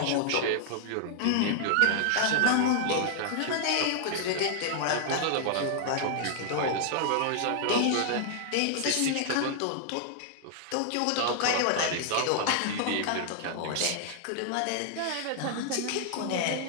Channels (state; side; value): different; both; correlation -0.01